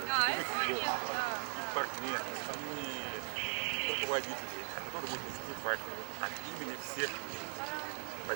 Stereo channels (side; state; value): left; silent; digital silence